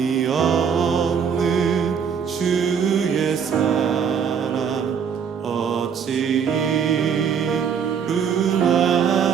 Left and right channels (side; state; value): left; quieter; 7.1 dB